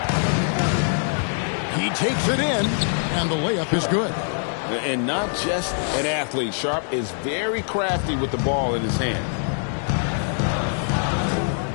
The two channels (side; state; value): right; silent; 63 dB below the other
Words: He takes it in, and the layup is good. And not just an athlete. Sharp is very crafty with the ball in his hand.